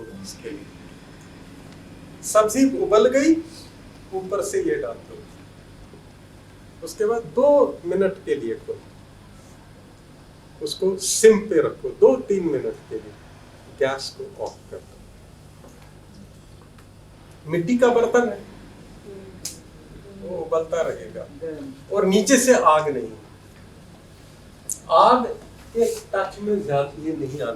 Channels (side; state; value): both; identical; correlation 1.00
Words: इसके लिए। सब्जी उबल गई, ऊपर से ये डाल दो। उसके बाद 2 मिनट के लिए उसको सिम पे रखो, 2-3 मिनट के लिए। गैस को ऑफ कर दो। मिट्टी का बर्तन है, वो उबलता रहेगा और नीचे से आग नहीं, आग के टच में ज्यादा ये नहीं